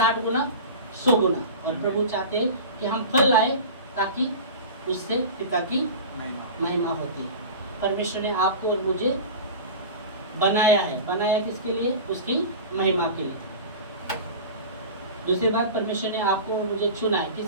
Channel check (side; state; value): both; inverted; correlation -0.33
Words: गुना 100 गुना। और प्रभु चाहते हैं कि हम फल लाए ताकि उससे पिता की महिमा होती है। परमेश्वर ने आपको और मुझे बनाया है, बनाया किसके लिए? उसकी महिमा के लिए। दूसरी बात, परमेश्वर ने आपको और मुझे चुना है,